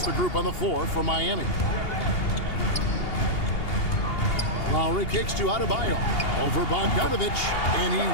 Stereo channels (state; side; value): late; right; 2.8 ms